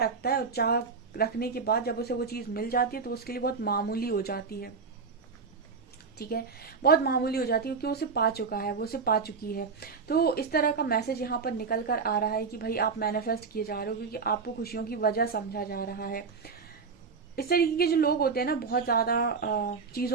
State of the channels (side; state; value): left; quieter; 5.1 dB